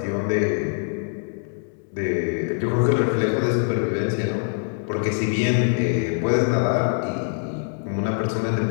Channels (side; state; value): right; silent; 63 dB below the other